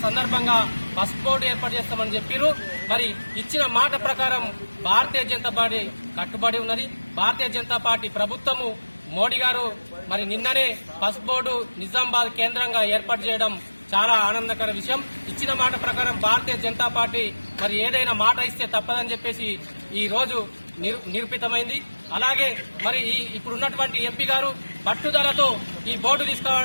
సందర్భంగా పసుపు బోర్డు ఏర్పాటు చేస్తామని చెప్పారు. మరి ఇచ్చిన మాట ప్రకారం భారతీయ జనతా పార్టీ కట్టుబడి ఉన్నది. భారతీయ జనతా పార్టీ ప్రభుత్వము మోడీ గారు మరి నిన్ననే పసుపు బోర్డు నిజామాబాద్ కేంద్రంగా ఏర్పాటు చేయడం చాలా ఆనందకర విషయం. ఇచ్చిన మాట ప్రకారం భారతీయ జనతా పార్టీ మరి ఏదైనా మాట ఇస్తే తప్పదని చెప్పేసి ఈ రోజు నిరూపితమైంది. అలాగే మరి ఇప్పుడున్నటువంటి ఎంపీ గారు పట్టుదలతో ఈ బోర్డు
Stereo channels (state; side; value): inverted; both; correlation -1.00